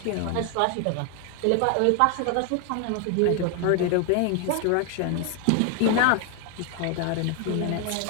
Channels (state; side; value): different; both; correlation 0.01